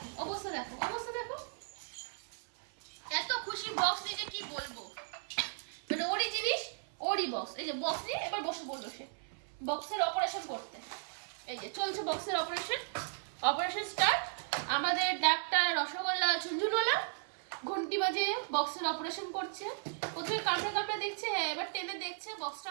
অবস্থা, দেখো অবস্থা, দেখো এত খুশি বক্স নিয়ে যে কি বলবো। মানে ওরই জিনিস, ওরই বক্স। এই যে বক্স নিয়ে এবার বসে পড়লো সে বক্সের অপারেশন করতে। এই যে চলছে বক্সের অপারেশন, অপারেশন স্টার্ট। আমাদের ডাক্তার রসগোল্লা ঝুনঝুনওয়ালা ঘন্টি বাজে বক্সের অপারেশন করছে। প্রথমে কামড়ে কামড়ে দেখছে, এবার টেনে দেখছে বক্সটা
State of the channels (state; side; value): silent; left; 54 dB below the other